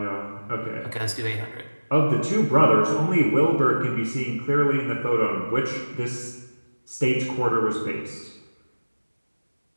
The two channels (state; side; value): inverted; both; correlation -1.00